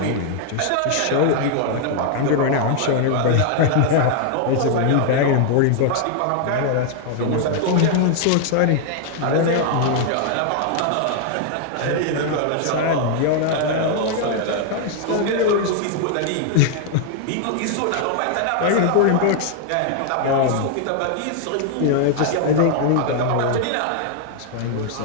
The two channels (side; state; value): both; different; correlation 0.00